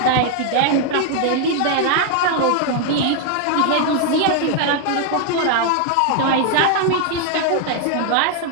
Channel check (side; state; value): both; different; correlation 0.00